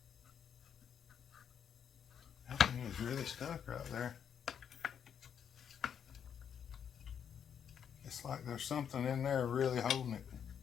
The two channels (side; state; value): right; quieter; 8.1 dB